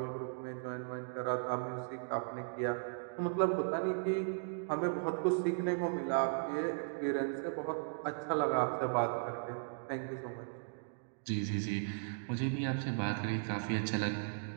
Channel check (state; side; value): silent; left; digital silence